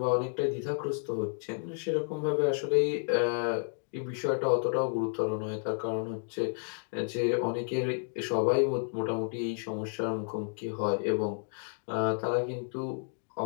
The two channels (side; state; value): right; silent; digital silence